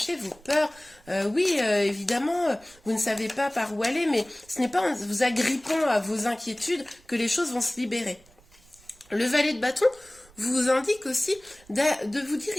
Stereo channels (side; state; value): right; noise; rumble, 28 dB below the sound